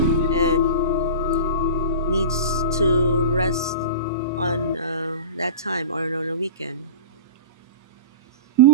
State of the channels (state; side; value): inverted; both; correlation -0.31